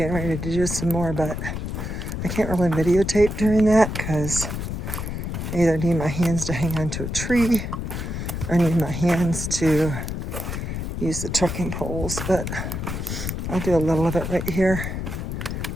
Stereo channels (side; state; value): left; noise; rumble, 4 dB below the sound